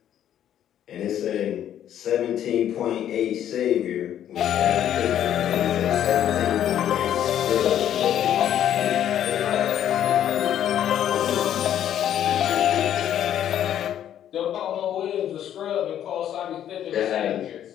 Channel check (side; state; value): right; quieter; 10.6 dB